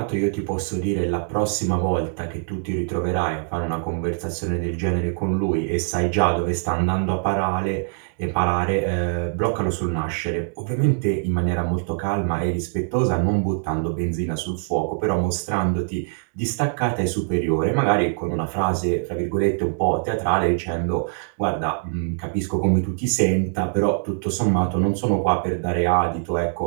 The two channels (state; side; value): silent; left; 63 dB below the other